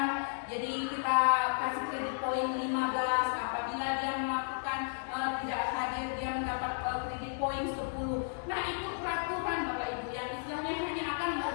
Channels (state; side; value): silent; right; digital silence